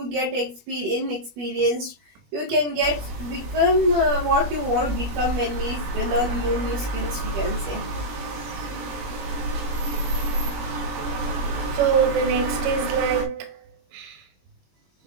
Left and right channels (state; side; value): late; left; 20 ms